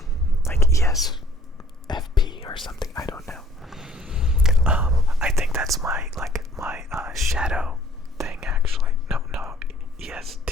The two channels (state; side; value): normal; both; correlation 0.56